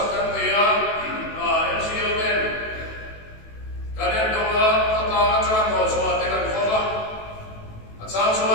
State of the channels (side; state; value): right; late; 18 ms